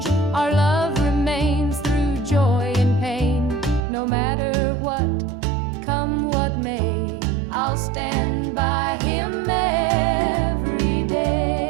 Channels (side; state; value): left; drops out; at 3.9 s